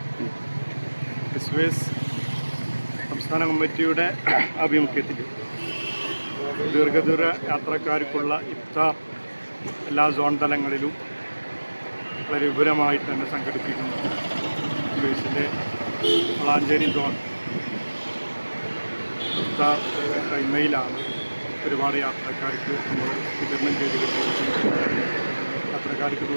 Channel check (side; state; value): both; inverted; correlation -1.00